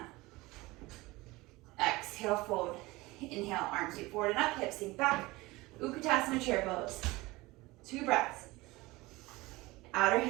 Exhale, fold. Inhale, arms sweep forward and up, hips sink back. Uttanasana chair pose. 2 breaths. outer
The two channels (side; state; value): left; quieter; 21.1 dB